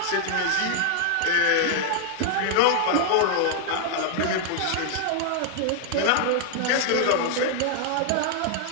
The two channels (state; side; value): different; both; correlation 0.00